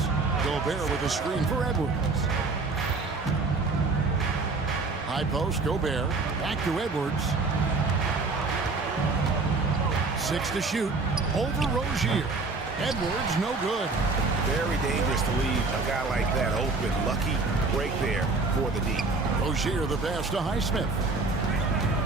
Gobert with a screen for Edwards. High post, Gobert. Back to Edwards. 6 to shoot. Over Rozier. Edwards, no good. Very dangerous to leave a guy like that open. Lucky break there for the D. Rozier the pass to Highsmith.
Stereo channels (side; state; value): left; quieter; 3.8 dB